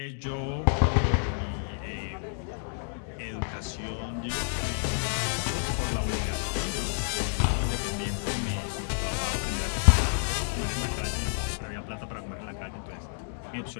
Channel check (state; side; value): silent; right; digital silence